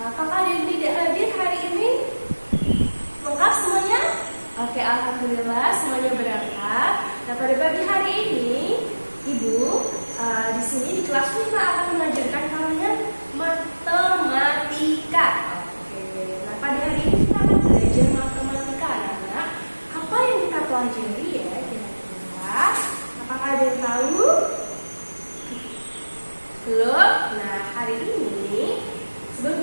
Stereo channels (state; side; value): inverted; both; correlation -1.00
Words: Apakah ada yang tidak hadir hari ini? Lengkap semuanya? Oke, alhamdulillah semuanya berangkat. Nah, pada pagi hari ini Ibu di sini di kelas 5 akan mengajarkan kalian matematika. Oke, nah pada hari ini kita akan belajar matematika anak-anak. Apa yang kita pelajari ya kira-kira? Apakah ada yang tahu? Belum? Nah, hari ini